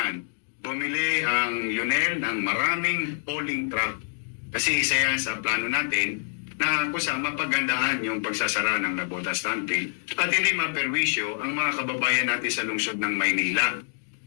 bumili ang Lionel ng maraming hauling truck. Kasi isa yan sa plano natin na kung saan mapagandaan yung pagsasara ng Nabota Standpill at hindi maperwisyo ang mga kababayan natin sa lungsod ng Maynila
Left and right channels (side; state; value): right; silent; digital silence